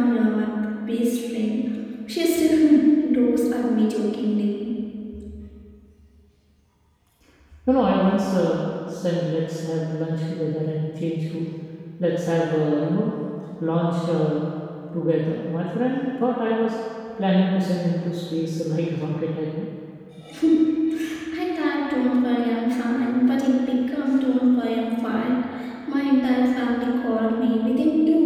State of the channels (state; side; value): identical; both; correlation 1.00